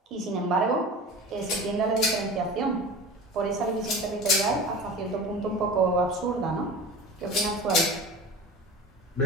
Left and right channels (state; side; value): normal; both; correlation 0.35